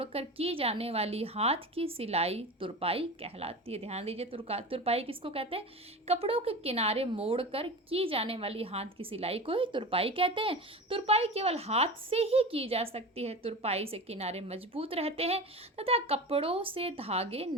की जाने वाली हाथ की सिलाई तुरपाई कहलाती है। ध्यान दीजिए, तुरपाई किसको कहते हैं, कपड़ों के किनारे मोड़कर की जाने वाली हाथ की सिलाई को ही तुरपाई कहते हैं। तुरपाई केवल हाथ से ही की जा सकती है। तुरपाई से किनारे मजबूत रहते हैं तथा कपड़ों से धागे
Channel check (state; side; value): normal; both; correlation 0.30